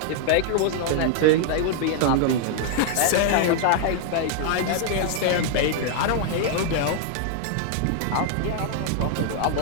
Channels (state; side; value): different; both; correlation 0.00